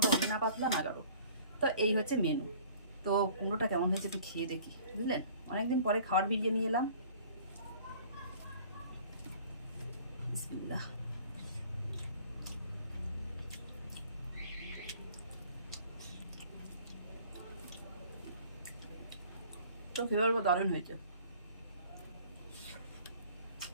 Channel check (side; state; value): both; inverted; correlation -0.50